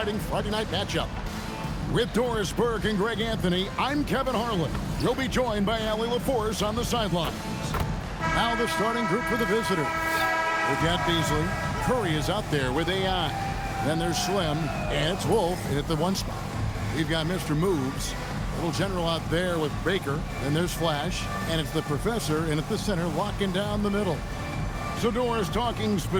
Friday night matchup. With Doris Burke and Greg Anthony, I'm Kevin Harlan. You'll be joined by Allie LaForce on the sidelines. Now the starting group for the visitors. We've got Beasley. Curry is out there with AI. Then there's Slim, and it's Wolf in at the one spot. We've got Mr. Moves. Little general out there with Baker. Then there's Flash, and it's the professor in at the center locking down the middle. So Doris, talking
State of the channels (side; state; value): both; identical; correlation 1.00